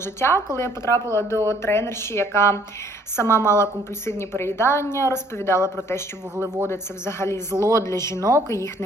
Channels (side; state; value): both; normal; correlation 0.61